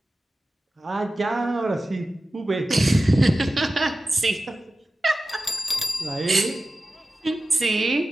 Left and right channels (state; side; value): normal; both; correlation 0.94